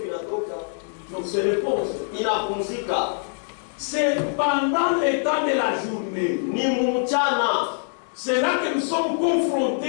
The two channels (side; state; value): right; silent; 63 dB below the other